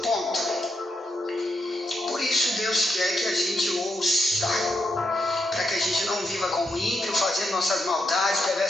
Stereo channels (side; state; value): both; normal; correlation 0.82